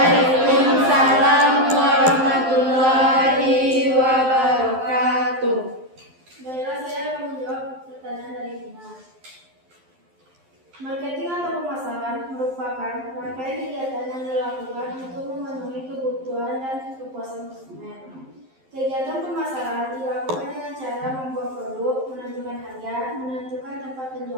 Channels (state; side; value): late; left; 12 ms